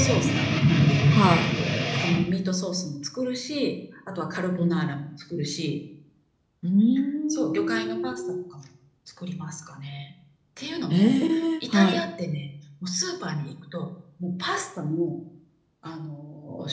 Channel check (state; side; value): identical; both; correlation 1.00